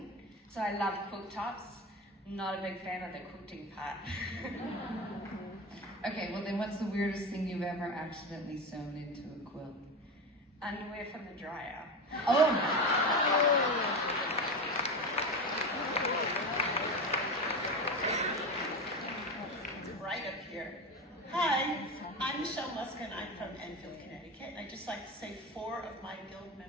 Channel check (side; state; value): both; normal; correlation 0.22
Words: so I love quilt tops. Not a big fan of the quilting part. Okay, well then what's the weirdest thing you've ever accidentally sewn into a quilt? Underwear from the dryer. Oh! Right up here. Hi, I'm Michelle Muskin. I'm from Enfield, Connecticut. And I'd just like to say 4 of my guild